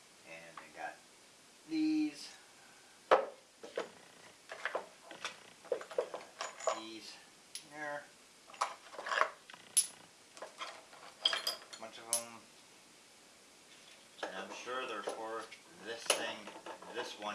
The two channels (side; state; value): both; identical; correlation 1.00